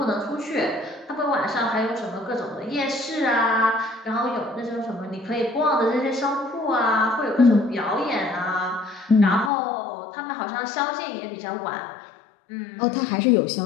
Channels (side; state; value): right; drops out; at 9.5 s